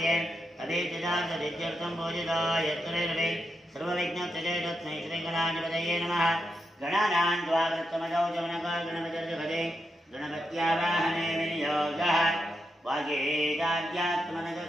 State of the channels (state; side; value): normal; both; correlation 0.85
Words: ಅಭೀತಿದಾರ್ಥಂ ಭೋಜಿತಾಯ ಯತ್ಕರೇರವೇ ಸರ್ವವಿಘ್ನೋಪಶಾಂತಯೇ. ತಸ್ಮೈ ಶ್ರೀಗಣಾಧಿಪತಯೇ ನಮಃ. ಗಣಾನಾಂ ತ್ವಾ ವೃತ್ತಮದೌ ಜವನಕೋ ಗಣಪತಿರ್ಜಗದೇ ಗಣಪತ್ಯಾವಾಹನೆ ವಿನಿಯೋಗಃ.